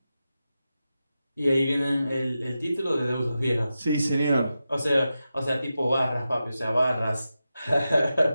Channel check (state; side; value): inverted; both; correlation -0.91